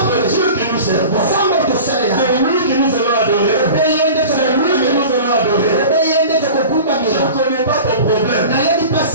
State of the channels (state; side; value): inverted; both; correlation -0.37